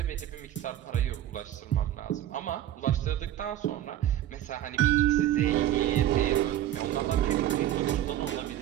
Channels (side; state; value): left; quieter; 12.3 dB